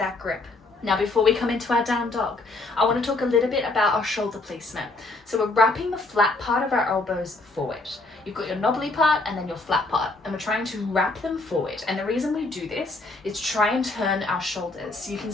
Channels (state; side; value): quieter; right; 3.2 dB